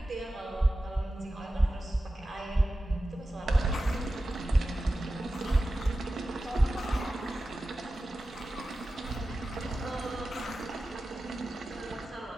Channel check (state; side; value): normal; both; correlation 0.94